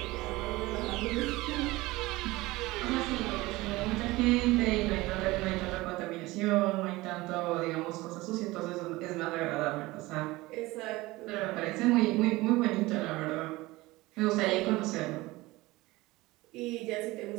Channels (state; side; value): quieter; left; 20.2 dB